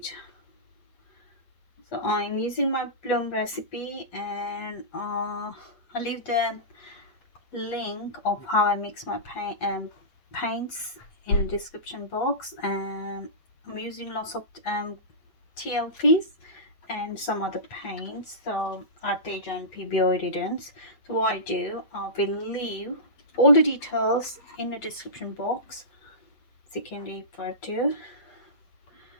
So I'm using my bloom recipe, and I'll leave the link of how I mix my paints in the description box. And I'm using lots of TLPs and some other paints, so Arteza and Pebeo Iridescent. So what I do, I will leave all the details in the description box so you can refer to.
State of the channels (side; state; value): right; late; 8.5 ms